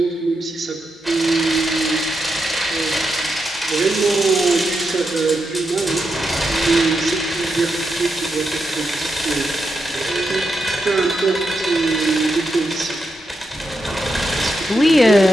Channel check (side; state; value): both; normal; correlation 0.85